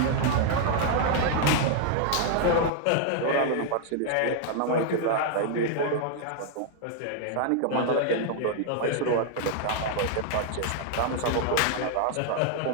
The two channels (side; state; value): both; different; correlation 0.00